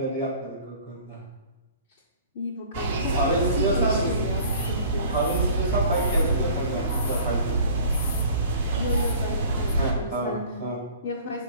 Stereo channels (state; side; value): inverted; both; correlation -0.47